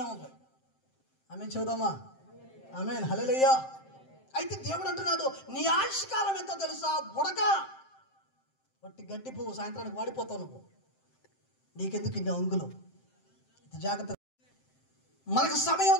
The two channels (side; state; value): right; late; 7.6 ms